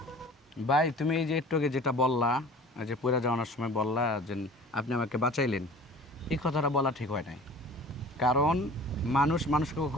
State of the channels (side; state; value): both; normal; correlation 0.44